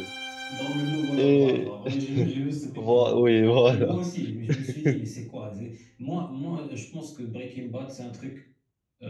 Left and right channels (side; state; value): both; identical; correlation 1.00